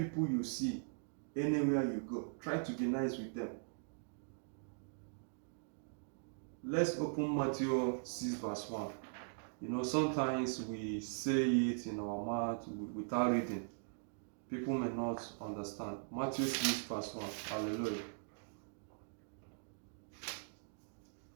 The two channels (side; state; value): left; silent; digital silence